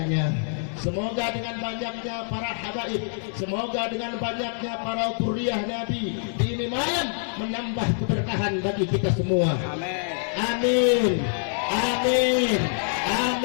Semoga dengan banyaknya para habaib, semoga dengan banyaknya para dzurriyyah Nabi di ini malam menambah keberkahan bagi kita semua. Amin. Amin.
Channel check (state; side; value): silent; right; digital silence